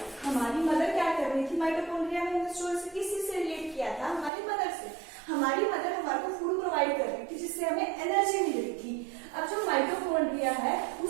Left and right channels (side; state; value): left; drops out; at 4.3 s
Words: हमारी मदर क्या कर रही थी, माइटोकॉन्ड्रिया में स्टोरी से किसी से रिलेट किया था, हमारी मदर से। हमारी मदर हमारे को फूड प्रोवाइड कर रही थी जिससे हमें एनर्जी मिल रही थी। अब जो माइटोकॉन्ड्रिया है